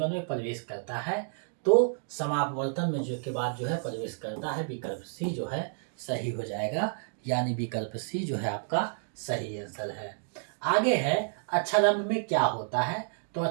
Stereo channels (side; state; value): left; silent; digital silence